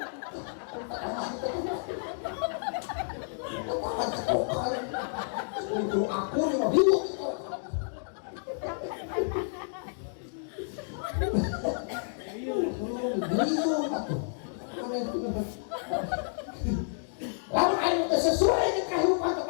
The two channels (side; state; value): right; silent; digital silence